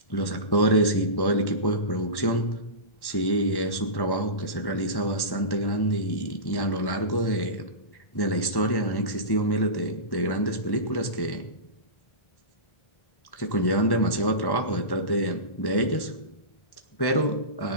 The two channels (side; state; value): right; late; 1.1 ms